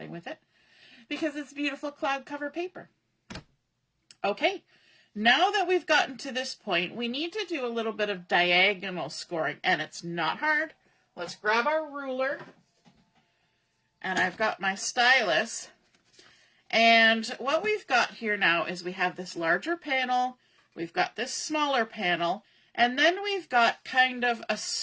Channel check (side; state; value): both; identical; correlation 1.00